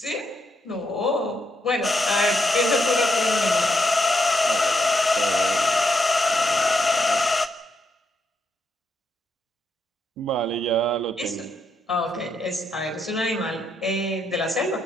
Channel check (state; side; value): normal; both; correlation 0.79